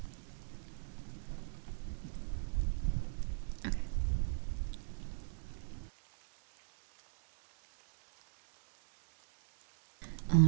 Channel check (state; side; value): silent; left; digital silence